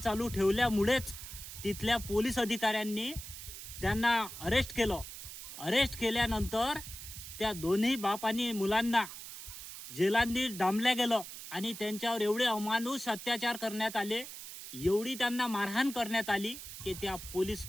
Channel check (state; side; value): noise; right; hiss, 11 dB below the sound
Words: ठेवल्यामुळेच तिथल्या पोलीस अधिकाऱ्यांनी त्यांना अरेस्ट केलं। अरेस्ट केल्यानंतर त्या दोन्ही बाप आणि मुलांना जेलांनी डांबल्या गेलं आणि त्यांच्यावर एवढे अमानुष अत्याचार करण्यात आले, एवढी त्यांना मारहाण करण्यात आली की त्या पोलीस